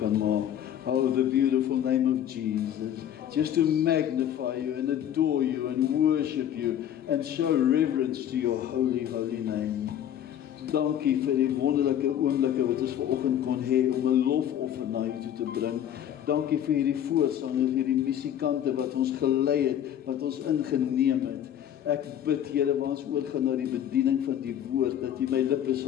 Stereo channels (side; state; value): right; quieter; 10.4 dB